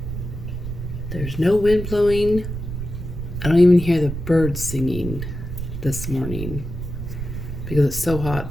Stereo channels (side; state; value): right; noise; rumble, 7 dB below the sound